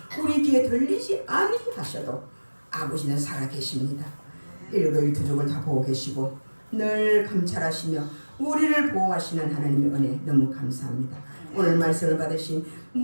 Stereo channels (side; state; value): both; inverted; correlation -1.00